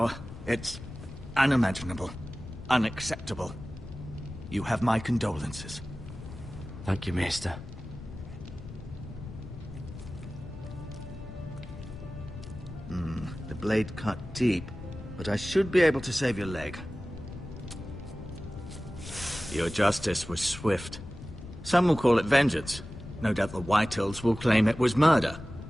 It's unimaginable. Unacceptable. You have my condolences. Thank you, Maester. The blade cut deep, but I should be able to save your leg. Your justice was swift. Some will call it vengeance. No doubt the Whitehills will claim it was murder.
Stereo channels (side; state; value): left; noise; rumble, 13 dB below the sound